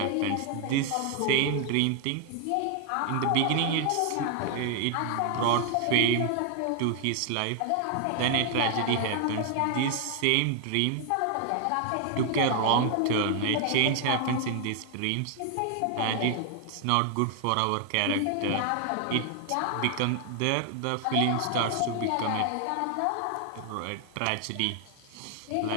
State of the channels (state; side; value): different; both; correlation 0.00